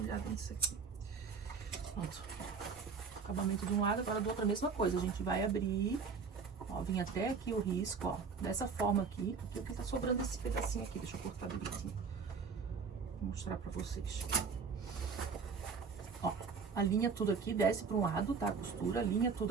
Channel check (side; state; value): left; quieter; 5.4 dB